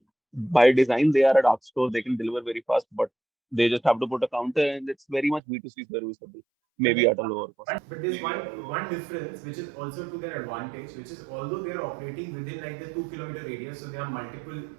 by design, they are a dark store. They can deliver very fast, but they just have to put a counter, and it's very much B2C serviceable, maybe at a lower cost. But there's one difference which is also to their advantage, which is although they are operating within like the 2 kilometer radius, so there are multiple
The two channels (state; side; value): drops out; left; at 5.4 s